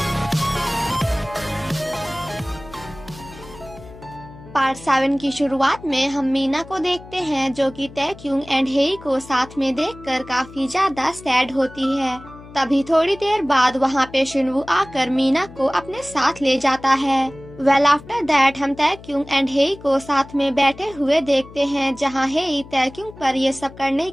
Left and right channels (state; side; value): noise; left; hum, 18 dB below the sound